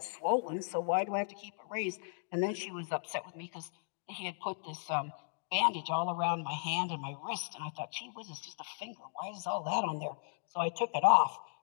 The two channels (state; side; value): silent; right; digital silence